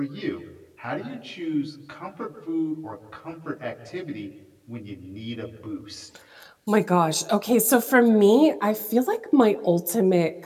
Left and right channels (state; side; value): identical; both; correlation 1.00